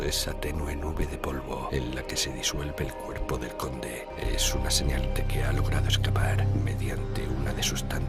esa tenue nube de polvo en la que se disuelve el cuerpo del conde es una señal de que ha logrado escapar mediante una de sus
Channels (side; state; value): both; identical; correlation 1.00